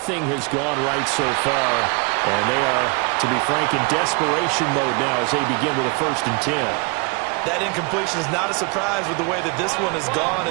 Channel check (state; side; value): quieter; left; 30.2 dB